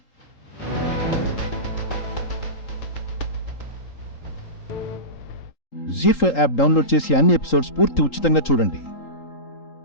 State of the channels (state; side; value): late; right; 3.8 ms